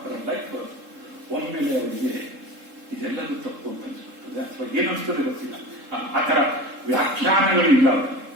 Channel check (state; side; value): late; left; 3.7 ms